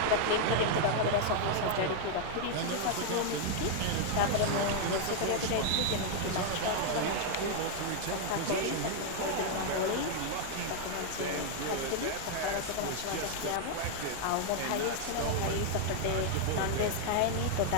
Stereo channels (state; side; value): different; both; correlation 0.00